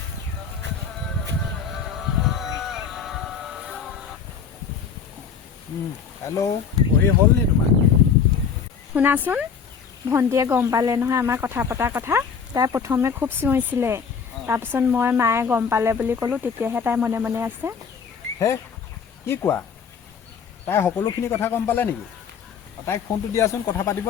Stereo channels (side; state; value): right; quieter; 6.5 dB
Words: হেল্ল' পঢ়ি হ'ল নি তোমাৰ শুনাচোন ভণ্টিয়ে গম পালে নহয় আমাৰ কথা পতাৰ কথা তাই প্ৰথমে খুব চিঞৰিছিলে তাৰপিছত মই মায়ে গম পালে বুলি ক'লোঁ তেতিয়াহে তাই মনে মনে আছে হে কি কোৱা তাই সকলোখিনি কথা গম পালে নেকি তাইক ফোনটো দিয়াচোন কথা পাতিব